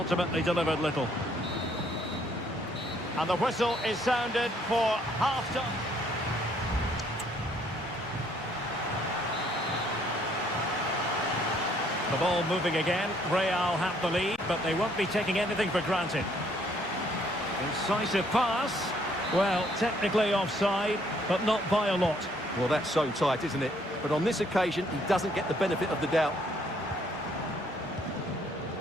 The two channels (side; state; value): both; normal; correlation 0.66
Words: delivered little. And the whistle is sounded for half-time. The ball moving again. Real have the lead, but they won't be taking anything for granted. Incisive pass. Well, technically offside, but not by a lot. Well, that's so tight, isn't it? But on this occasion, he doesn't get the benefit of the doubt.